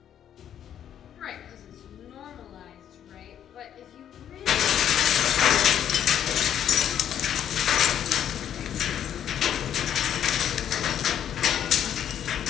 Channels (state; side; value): quieter; right; 9.8 dB